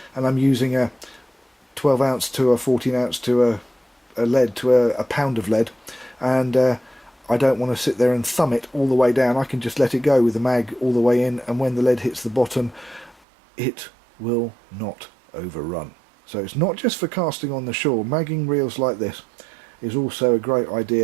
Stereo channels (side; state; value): left; drops out; at 13.2 s